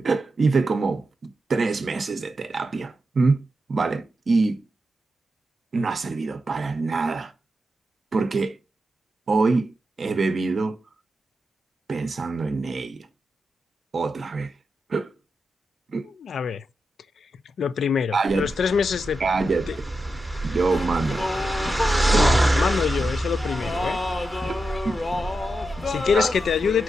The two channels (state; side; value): normal; both; correlation 0.88